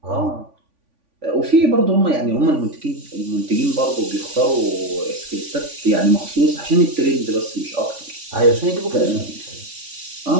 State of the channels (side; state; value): left; late; 3.5 ms